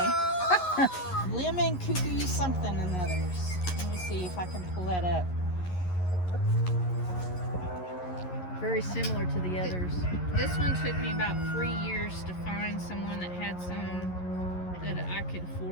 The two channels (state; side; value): late; right; 11 ms